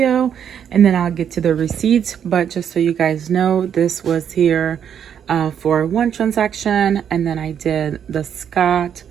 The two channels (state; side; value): quieter; left; 8.6 dB